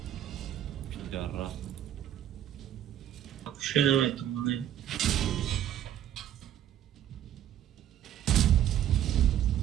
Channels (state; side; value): quieter; left; 11.0 dB